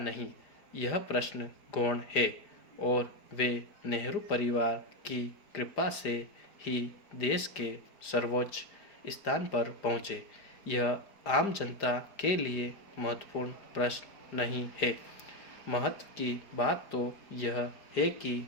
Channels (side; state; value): right; late; 5.0 ms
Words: यह प्रश्न गौण है, और वे नेहरू परिवार की कृपा से ही देश के सर्वोच्च स्थान पर पहुँचे। यह आम जनता के लिए महत्वपूर्ण प्रश्न नहीं है। महत्व की बात तो यह है कि